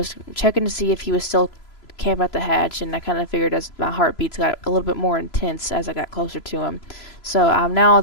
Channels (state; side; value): late; right; 3.0 ms